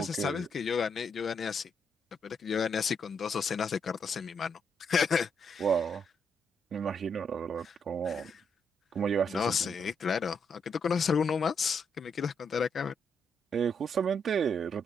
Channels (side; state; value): both; normal; correlation 0.77